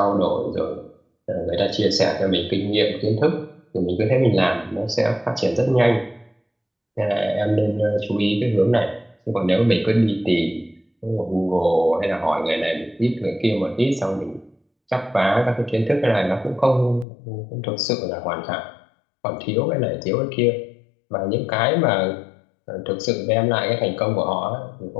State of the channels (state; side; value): drops out; right; at 17.1 s